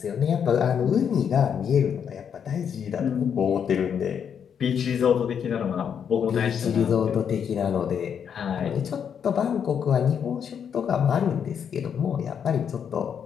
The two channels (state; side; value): quieter; right; 7.8 dB